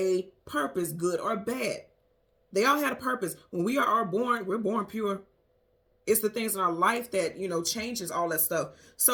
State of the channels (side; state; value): both; identical; correlation 1.00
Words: purpose, good or bad. They all had a purpose. When we are born, we're born pure. It's the things in our life that, changes all that stuff.